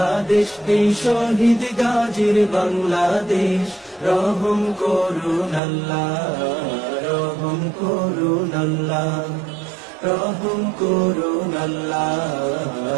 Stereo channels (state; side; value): drops out; left; at 5.6 s